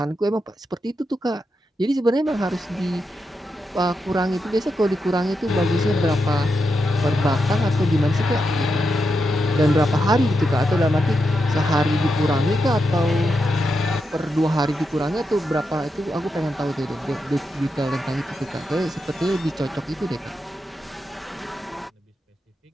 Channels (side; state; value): both; normal; correlation 0.86